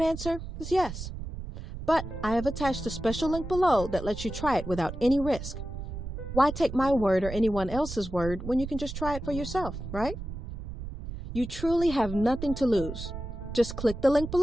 answer is yes. But I have attached a special link below that lets you try it without any risk. Why take my word or anyone else's word when you can just try it for yourself, right? You truly have nothing to lose. Just click the link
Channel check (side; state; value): right; noise; rumble, 8 dB below the sound